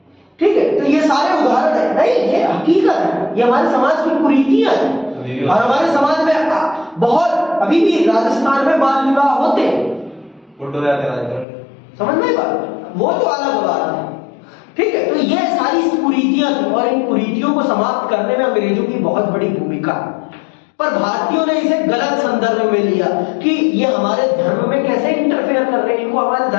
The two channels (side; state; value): right; drops out; at 11.5 s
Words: ठीक है। तो ये सारे उदाहरण है, नहीं ये हकीकत है, ये हमारे समाज की कुरीतियां हैं। और हमारे समाज में बहुत अभी भी राजस्थान में बाल विवाह होते हैं, समझ में बात, वो तो अलग बात है, ठीक है। तो ये सारी कुरीतियां थी और इन कुरीतियों को समाप्त करने में अंग्रेजों की बहुत बड़ी भूमिका है। पर भारतीयों ने इसे गलत संदर्भ में लिया कि ये हमारे धर्म में कैसे इंटरफेयर कर रहे हैं, इनको हमारे